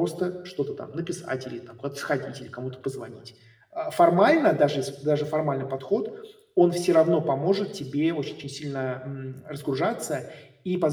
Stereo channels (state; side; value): identical; both; correlation 1.00